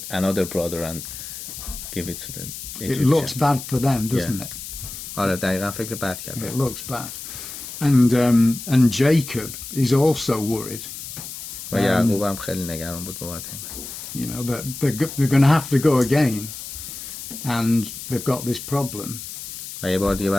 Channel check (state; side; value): noise; left; hiss, 10 dB below the sound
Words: another brother and give it to them. It looks bad for them, doesn't it? آره دقیقا فکر بد It کرد. looks bad. And Jacob is also worried. و یعقوب هم خیلی نگران بود بابت این. You know, that they're going to have to go again, and they've got this problem. و یه بار دیگه